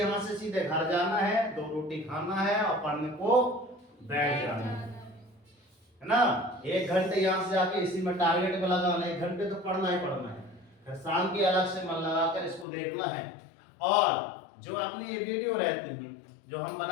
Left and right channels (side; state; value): right; drops out; at 12.7 s